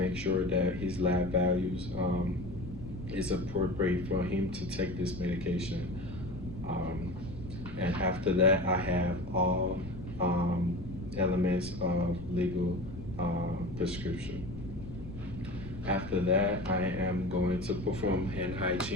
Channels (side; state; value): left; noise; rumble, 12 dB below the sound